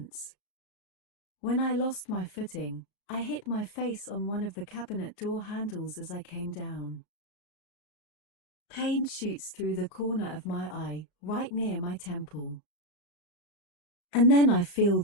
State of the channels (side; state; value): right; late; 35 ms